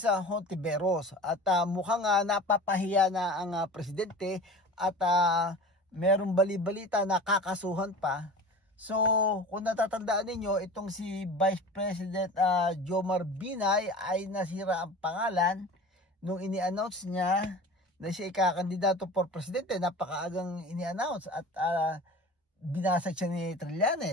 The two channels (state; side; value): normal; both; correlation 0.37